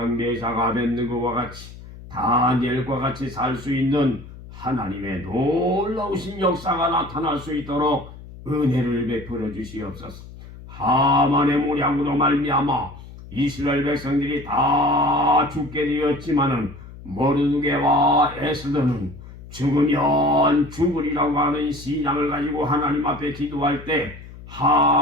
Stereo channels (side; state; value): left; noise; hum, 16 dB below the sound